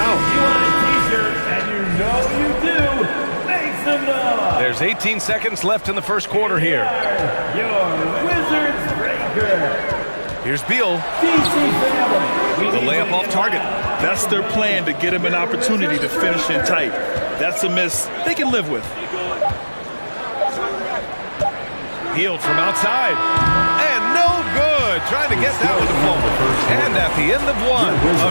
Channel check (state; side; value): inverted; both; correlation -1.00